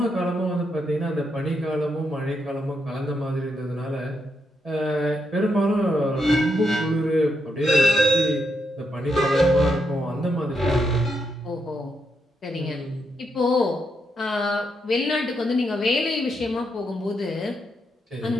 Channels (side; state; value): both; normal; correlation 0.80